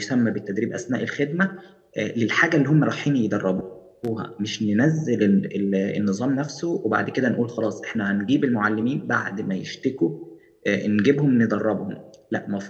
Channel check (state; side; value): identical; both; correlation 1.00